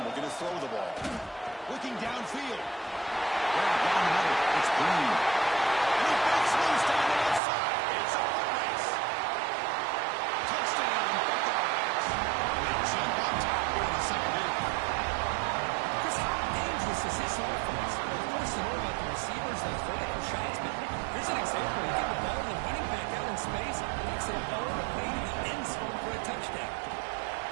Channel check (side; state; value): left; drops out; at 7.4 s